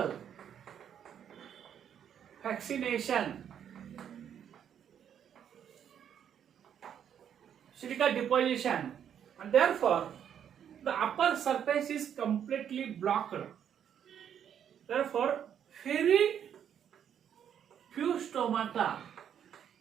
vaccination, silica deposition, and therefore the upper surface is completely blocked. Therefore, very few stomata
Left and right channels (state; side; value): quieter; left; 8.9 dB